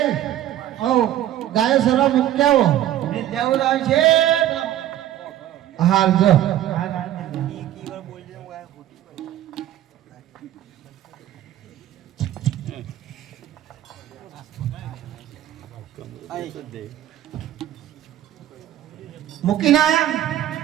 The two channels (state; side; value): quieter; left; 12.6 dB